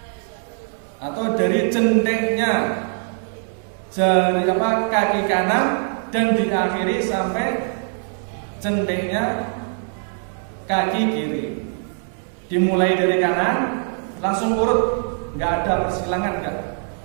atau dari jentiknya jari kaki kanan dan diakhiri sampai jentiknya kaki kiri. Dimulai dari kanan langsung urut, nggak ada persilangan, nggak.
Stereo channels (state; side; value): silent; left; 60 dB below the other